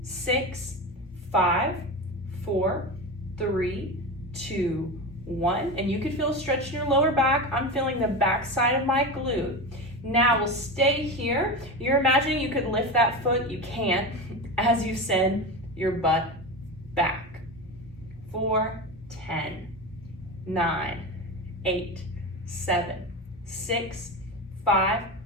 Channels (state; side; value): normal; both; correlation 0.22